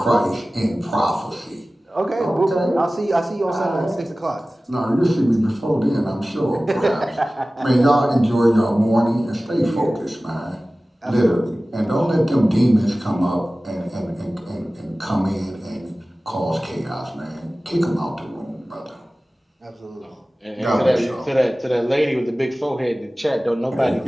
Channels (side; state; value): both; normal; correlation 0.97